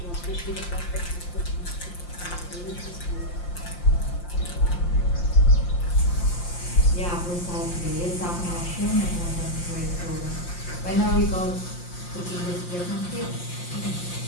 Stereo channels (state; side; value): late; right; 5.7 ms